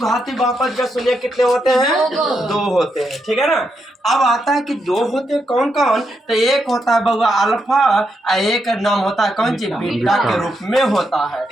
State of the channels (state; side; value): normal; both; correlation 0.82